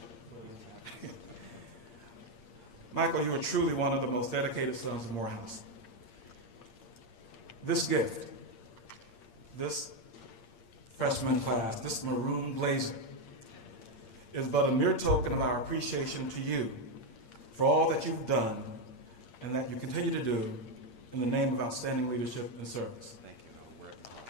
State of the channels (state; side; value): late; right; 8.6 ms